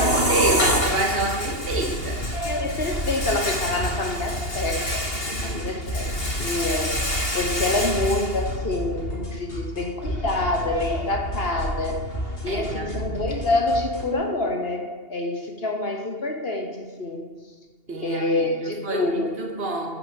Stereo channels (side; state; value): right; late; 2.8 ms